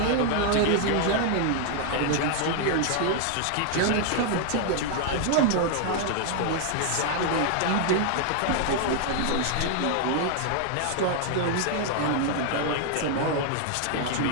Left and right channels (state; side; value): different; both; correlation 0.00